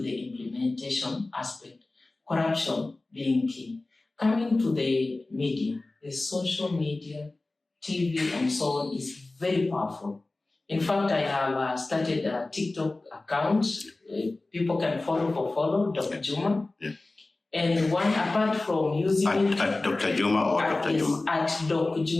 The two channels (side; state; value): right; quieter; 3.1 dB